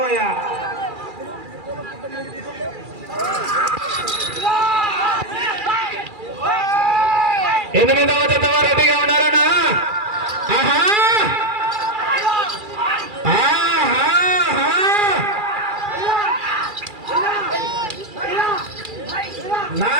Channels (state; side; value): late; left; 2.4 ms